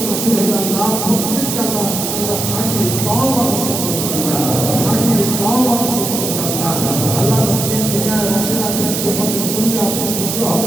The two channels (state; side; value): noise; right; hiss, 3 dB below the sound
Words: নসিব হবে আল্লাহ প্রত্যেককে আল্লাহ খাঁটি তওবা নসিব করবেন। খাঁটি তওবা নসিব করবেন। আল্লাহ যতদিন দুনিয়ায় বসে রাখবেন যে পথে চললে আপনি খুশি